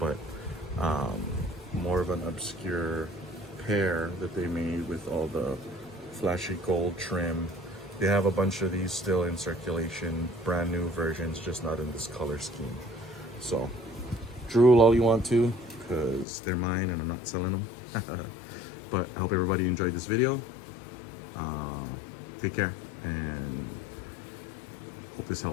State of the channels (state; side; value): drops out; right; at 16.2 s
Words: more of an obscure pair that they made with all the flashy gold trim. They have a bunch of these still in circulation, brand new versions, just not in this color scheme. So drool all you want to, because they're mine and I'm not selling them. But I hope everybody enjoyed this video. Take care, and hope this